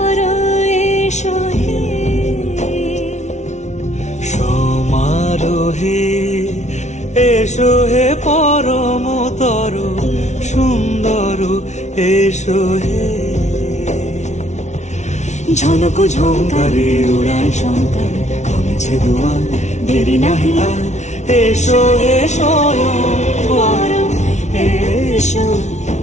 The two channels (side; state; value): right; late; 0.33 ms